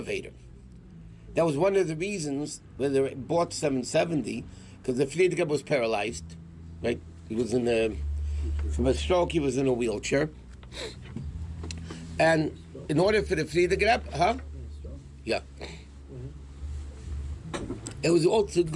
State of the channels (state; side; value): identical; both; correlation 1.00